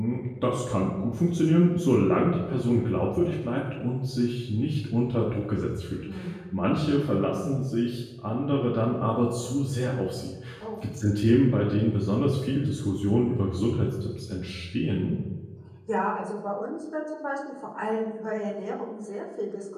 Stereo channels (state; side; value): identical; both; correlation 1.00